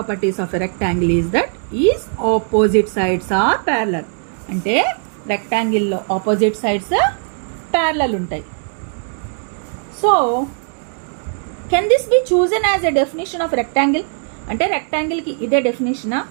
of a rectangle is that its opposite sides are parallel. అంటే రెక్టాంగిల్ లో ఆపోజిట్ సైడ్స్ ప్యారలల్ ఉంటాయి. So can this be chosen as a definition of rectangle? అంటే rectangle కి ఇదే డెఫినేషనా?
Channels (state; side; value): silent; left; 62 dB below the other